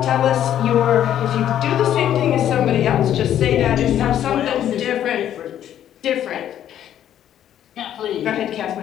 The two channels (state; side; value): quieter; right; 10.8 dB